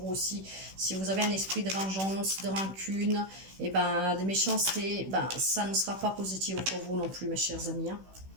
aussi. Si vous avez un esprit de vengeance, de rancune, et ben de méchanceté, ben ça ne sera pas positif pour vous non plus, mes chers amis. Hein.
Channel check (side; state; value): left; late; 16 ms